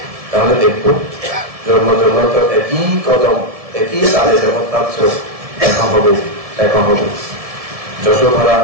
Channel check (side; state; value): left; late; 1.7 ms